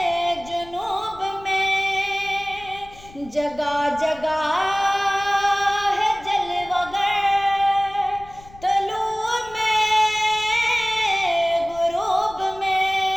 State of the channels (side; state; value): left; noise; rumble, 21 dB below the sound